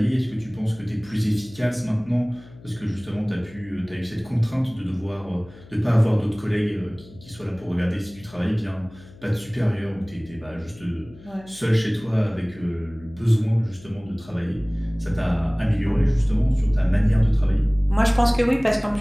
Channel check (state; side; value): noise; left; hum, 21 dB below the sound